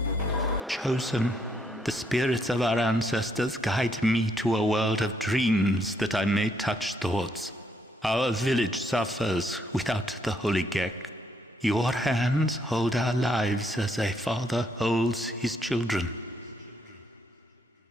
the spirits of our ancestors guide me to a world of dreams that I may touch thoughts. Our village suffers without the holy Gecko. Your hands hold our lives as a father holds his children.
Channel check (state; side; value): normal; both; correlation 0.73